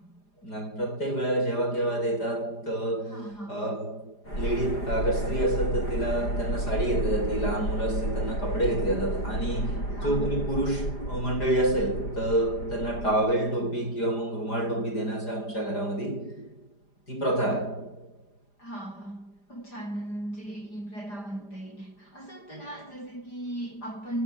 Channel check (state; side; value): late; right; 4.9 ms